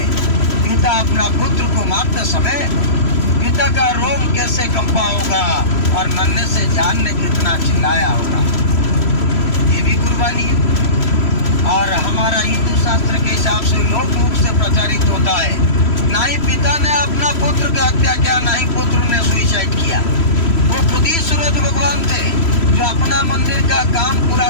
पिता अपना पुत्र को मारते समय पिता का रोम कैसे कंपा होगा और नन्हे से जान ने कितना चिल्लाया होगा। ये भी कुर्बानी है। और हमारा हिंदू शास्त्र के हिसाब से लोक मुख से प्रचारित होता है, ना ही पिता ने अपना पुत्र का हत्या किया, ना ही पुत्र ने सुसाइड किया। वो खुद ही सूरज भगवान थे जो अपना मंदिर का काम पूरा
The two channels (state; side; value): late; right; 3.0 ms